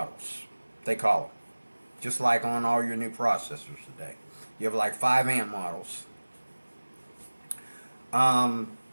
they call them. Just like on all your new processors today. You have like 5 amp models. You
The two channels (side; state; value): both; inverted; correlation -1.00